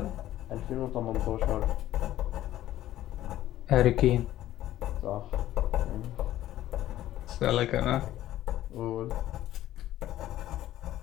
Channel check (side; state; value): right; quieter; 13.7 dB